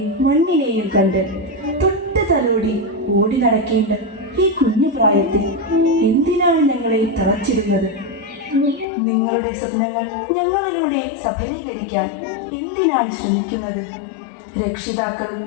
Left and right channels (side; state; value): right; drops out; at 8.8 s